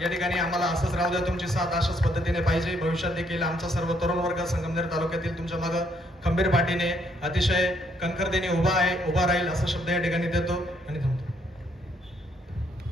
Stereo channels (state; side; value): normal; both; correlation 0.70